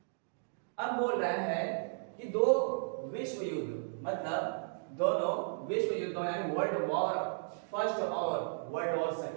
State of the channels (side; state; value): left; silent; digital silence